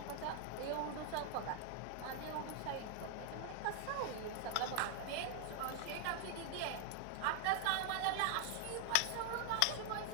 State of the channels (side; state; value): both; different; correlation 0.00